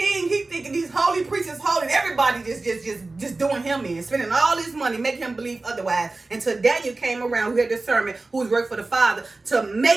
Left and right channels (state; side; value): quieter; left; 3.4 dB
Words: He thinking these holy priests is holy. Everybody just doing him in, spending all this money, making him believe otherwise. Until Daniel came around, who had discernment, who was working for the Father, to